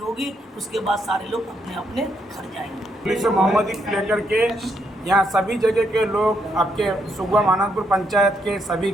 उसके बाद सारे लोग अपने अपने घर जाएंगे। जुलूस मोहम्मदी को लेकर के यहाँ सभी जगह के लोग, आपके सुगवा मानंदपुर पंचायत के सभी,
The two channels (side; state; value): both; normal; correlation 0.76